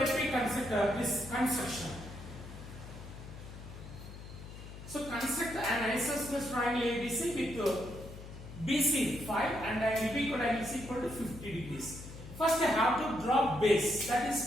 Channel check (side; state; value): left; noise; hum, 13 dB below the sound